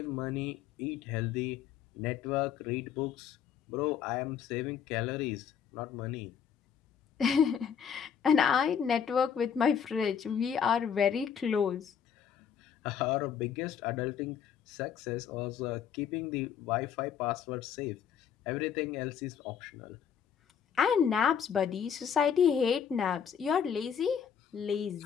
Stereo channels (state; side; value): quieter; right; 7.8 dB